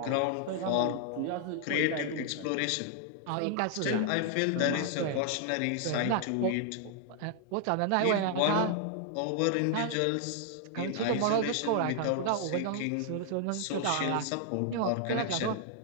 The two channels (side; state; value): both; different; correlation 0.00